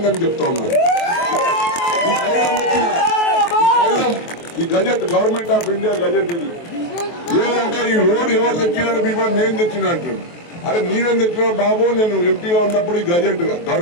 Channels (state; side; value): late; right; 23 ms